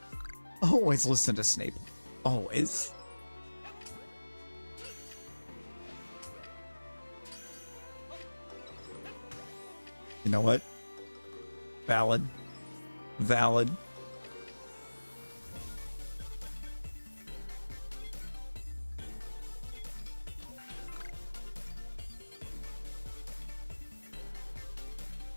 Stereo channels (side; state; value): both; inverted; correlation -1.00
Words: Always listen to Snape. Always. You know what? Valid. Valid.